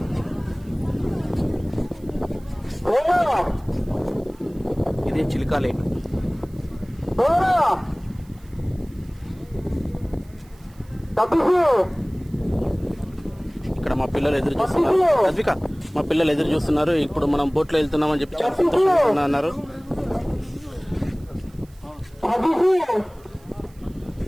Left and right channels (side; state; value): right; noise; hiss, 29 dB below the sound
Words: ఇదే చిల్కా లేక్. ఇక్కడ మా పిల్లలు ఎదురు చూస్తున్నారు. అద్విక, మా పిల్లలు ఎదురు చూస్తున్నారు. ఇప్పుడు మనం బోట్లో వెళ్తున్నామని చెప్పి చాలా సంతోషంగా అన్నారు.